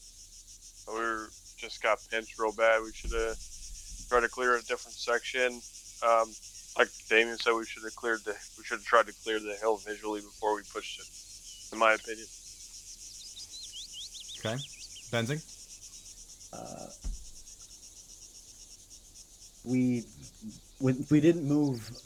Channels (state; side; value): identical; both; correlation 1.00